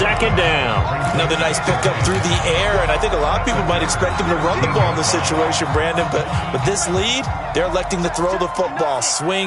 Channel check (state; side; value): identical; both; correlation 1.00